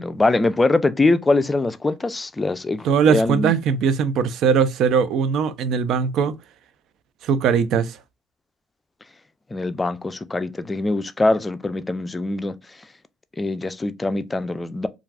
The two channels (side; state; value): both; normal; correlation 0.69